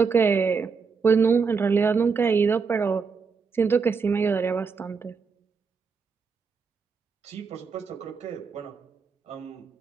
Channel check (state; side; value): quieter; left; 5.3 dB